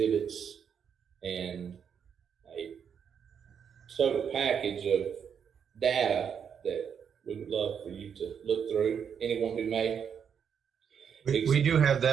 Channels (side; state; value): left; quieter; 7.5 dB